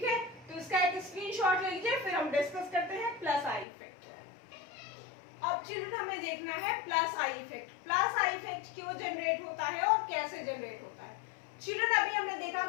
है, तो इसका एक स्क्रीनशॉट ले लीजिए, फिर हम डिस्कस करते हैं प्लस आई इफेक्ट। अब चिल्ड्रन हमें देखना है plus I effect. Plus I effect क्यों जनरेट होता है और कैसे जनरेट होता है। चिल्ड्रन अभी हमने देखा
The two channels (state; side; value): drops out; right; at 3.7 s